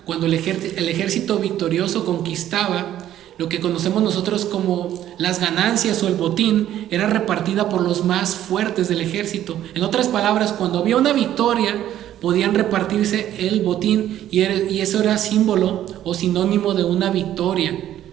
cuando el ejército victorioso conquistaba, lo que conocemos nosotros como las ganancias o el botín, era repartida por los más fuertes del ejército. En otras palabras, cuando había una victoria, podían repartirse el botín y eso era símbolo o sinónimo de una victoria.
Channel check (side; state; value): left; quieter; 12.0 dB